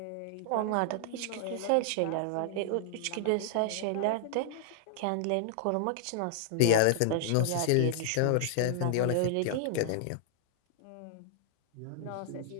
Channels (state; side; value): different; both; correlation 0.00